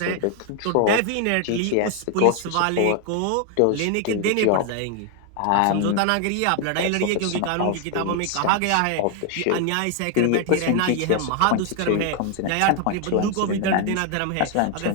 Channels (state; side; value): different; both; correlation 0.00